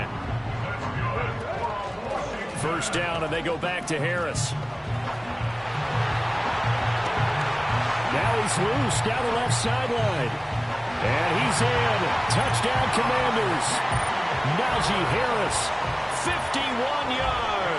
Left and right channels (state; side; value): identical; both; correlation 1.00